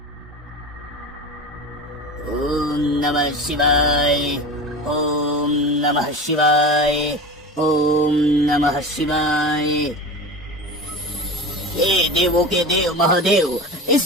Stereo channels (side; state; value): both; normal; correlation 0.30